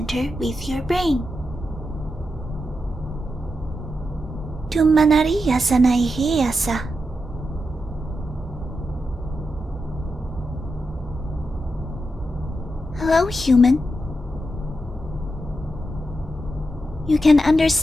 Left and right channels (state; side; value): normal; both; correlation 0.87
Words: with your brain. Tumanariya sanaiheyasa. Hello, human. You can